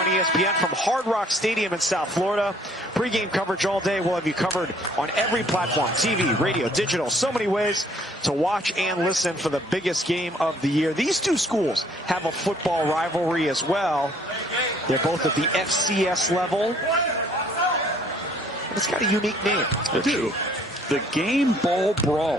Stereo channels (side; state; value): both; normal; correlation 0.60